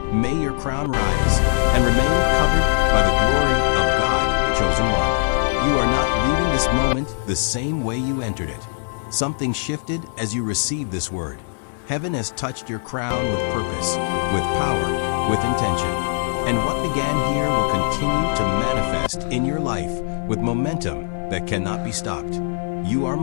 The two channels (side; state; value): right; silent; 62 dB below the other